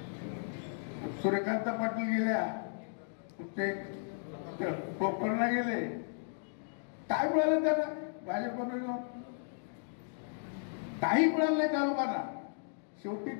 सूर्यकांत पाटील गेल्या, ते कोकणला गेले. काय मिळालं त्यांना भाजपनं जाऊन? काही मिळालं नाही त्या लोकांना.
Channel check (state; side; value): silent; right; digital silence